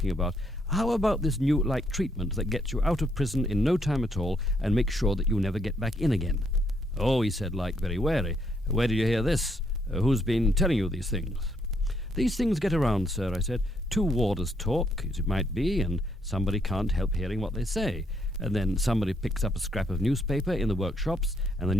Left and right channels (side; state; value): both; normal; correlation 0.73